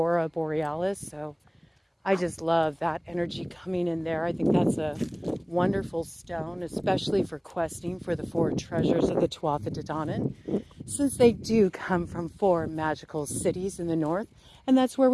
borealis. So I just love that energy coming in there. I think that's a wonderful stone, especially for questing for the 4 treasures of the Tuatha De Danann, since they do come from 4 magical cities in the north, and that's where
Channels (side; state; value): both; identical; correlation 1.00